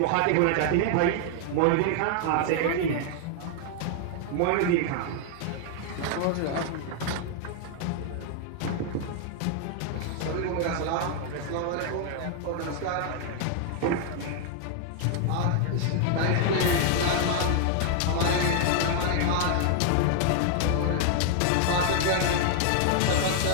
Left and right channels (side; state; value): both; different; correlation 0.00